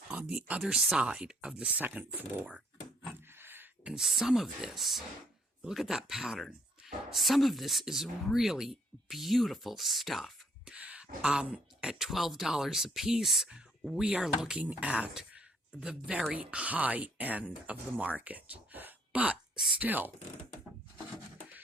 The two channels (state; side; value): normal; both; correlation 0.66